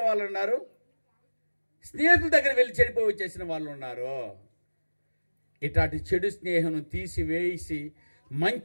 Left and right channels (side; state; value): both; inverted; correlation -1.00